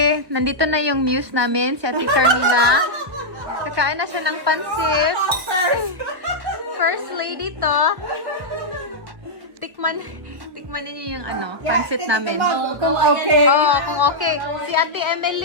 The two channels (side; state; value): left; late; 1.0 ms